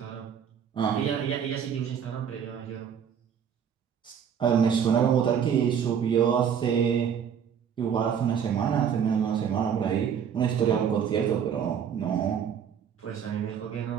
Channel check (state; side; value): quieter; left; 7.9 dB